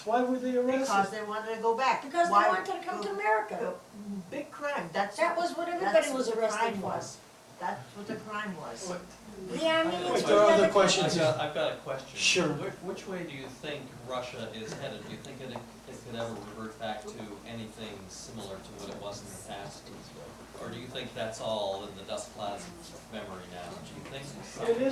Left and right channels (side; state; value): both; identical; correlation 1.00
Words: Why were they Because arrested? they wanted to go back. Because they Why- wanted to come to America. Big crime. That was what everybody was arrested for. That's what the crime was. What- The Armenians Wait, were there are other never- questions. I've got a question. Sure. Which way do you think Russia is headed? Do you think it could ever revert back to anything similar to what it was in the past? Or do you think that's all in the dust clouds of memory now? Do you think something